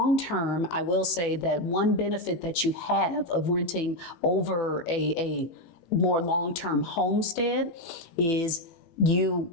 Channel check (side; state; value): right; late; 18 ms